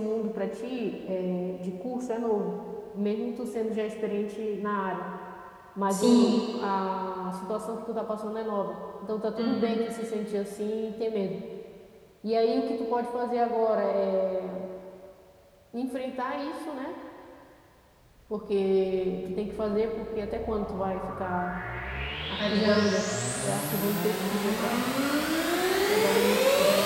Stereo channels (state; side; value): identical; both; correlation 1.00